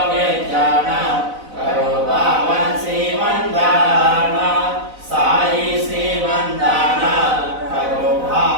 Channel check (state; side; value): late; left; 4.0 ms